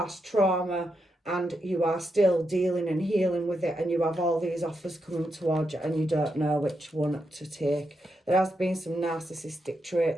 trauma and you are still dealing and healing with it, and you have all these offers coming towards you and you don't know which one to take. There has been some narcissistic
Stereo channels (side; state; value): both; normal; correlation 0.84